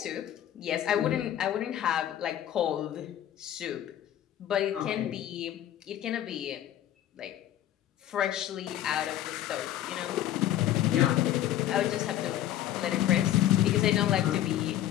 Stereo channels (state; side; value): quieter; right; 12.2 dB